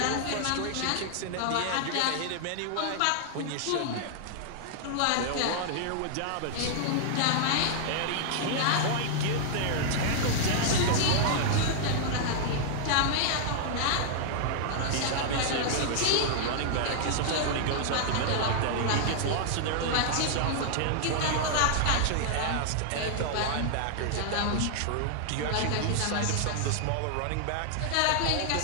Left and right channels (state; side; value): different; both; correlation -0.01